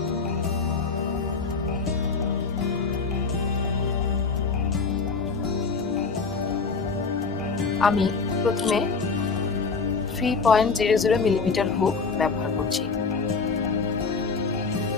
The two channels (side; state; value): right; quieter; 4.7 dB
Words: আমি প্রথমে 3.00 মিলিমিটার হুক ব্যবহার করছি।